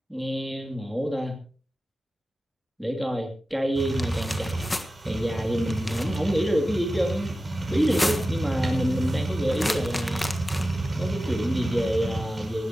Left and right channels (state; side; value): normal; both; correlation 0.94